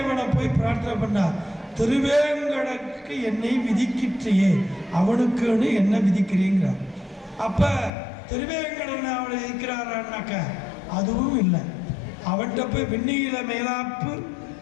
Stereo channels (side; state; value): right; drops out; at 7.9 s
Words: போய் பிரார்த்தனை பண்ணார், திருவேங்கடக்கு என்னை விதிக்கிற்றையே அவனுக்குன்னு என்ன விதிக்கிறீங்கிறார். அப்ப திருவேங்கடன் அவனை விதிக்கிறாரான்னாக்க அதுவும் இல்லை. அவன்கிட்ட போய் வெந்நீல மேலாப்பு